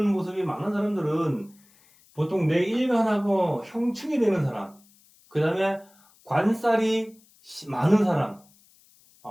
모습이 많은 사람들은 보통 내 일간하고 형충이 되는 사람, 그 다음에 관살이 많은 사람,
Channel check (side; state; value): left; noise; hiss, 30 dB below the sound